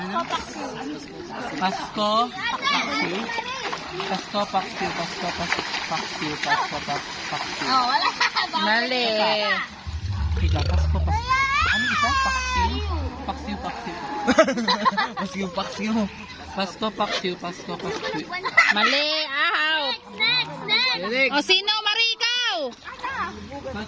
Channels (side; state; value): both; identical; correlation 1.00